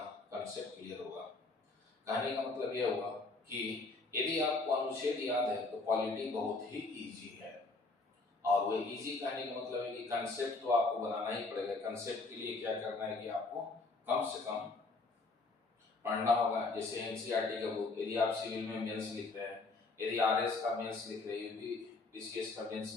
कंसेप्ट क्लियर होगा। कहने का मतलब यह हुआ कि यदि आपको अनुच्छेद याद है तो पॉलिटी बहुत ही इजी है। और वो इजी कहने का मतलब है कि कंसेप्ट तो आपको बनाना ही पड़ेगा। कंसेप्ट के लिए क्या करना है कि आपको कम से कम पढ़ना होगा। जैसे एनसीईआरटी का बुक, यदि आप सिविल में मेंस लिख रहे हैं, यदि आरएस का मेंस लिख रहे हैं, यूपी पीसीएस का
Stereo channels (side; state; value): right; quieter; 3.6 dB